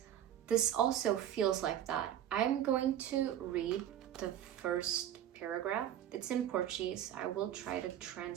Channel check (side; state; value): left; quieter; 11.0 dB